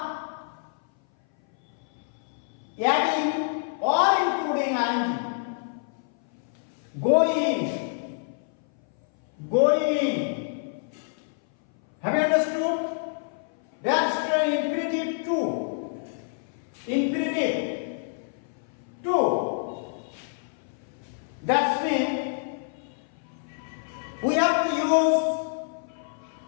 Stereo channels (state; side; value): silent; right; 58 dB below the other